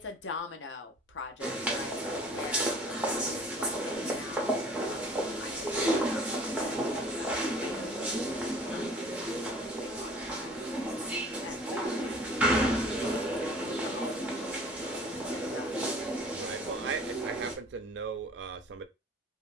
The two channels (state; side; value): normal; both; correlation 0.49